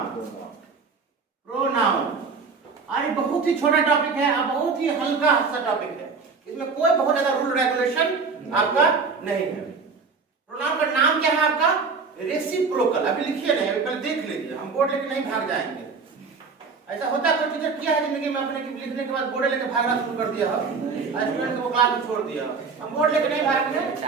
प्रोनाउन अरे बहुत ही छोटा टॉपिक है और बहुत ही हल्का सा टॉपिक है, इसमें कोई बहुत ज्यादा रूल रेगुलेशन आपका नहीं है। प्रोनाउन का नाम क्या है आपका? रेसिप्रोकल। अभी लिखिए नहीं, अभी पहले देख लीजिए, हम बोर्ड लेके नहीं भाग जाएंगे। ऐसा होता है कोई टीचर किया है जिंदगी में अपने की लिखने के बाद बोर्ड लेके भागना शुरू कर दिया हो, स्टूडेंट को क्लास में छोड़ दिया। हम बोर्ड लेके नहीं भागेंगे,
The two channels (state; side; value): quieter; left; 4.9 dB